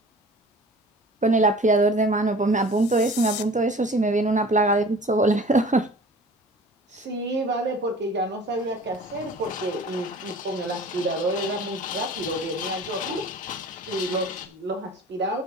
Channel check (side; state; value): both; normal; correlation 0.44